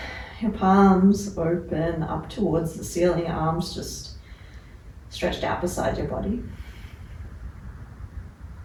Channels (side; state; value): both; identical; correlation 1.00